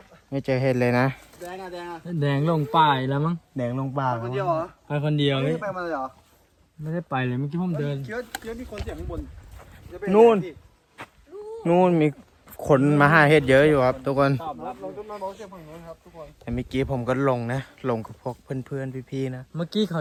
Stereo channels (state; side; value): identical; both; correlation 1.00